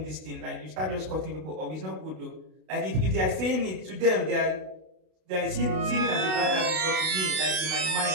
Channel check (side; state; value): left; late; 32 ms